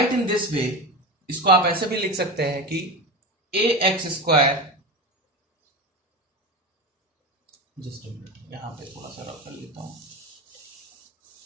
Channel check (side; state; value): both; normal; correlation 0.23